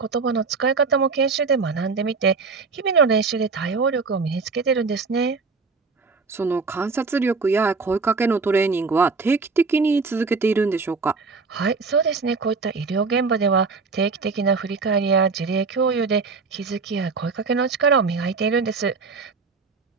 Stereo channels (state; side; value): quieter; left; 4.5 dB